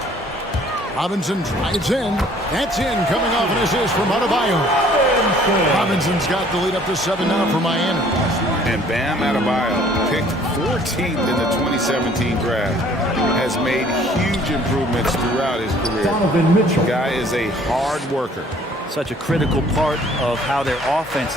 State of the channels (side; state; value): both; normal; correlation 0.56